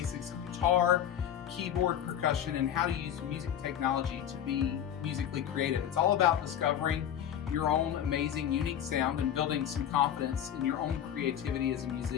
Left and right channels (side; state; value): right; quieter; 9.9 dB